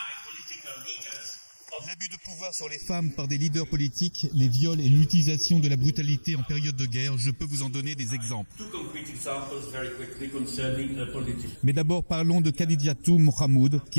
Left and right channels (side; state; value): both; inverted; correlation -1.00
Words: L'abus de pouvoir sur les femmes par des leaders politiques, les viols et l'utilisation de la brutalité en période de guerre, je peux vous en donner des exemples. Mais d'abord parlons de Khadijatou Mahmoud,